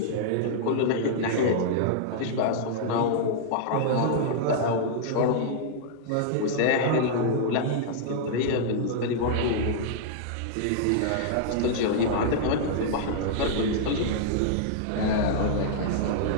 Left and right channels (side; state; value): both; different; correlation -0.01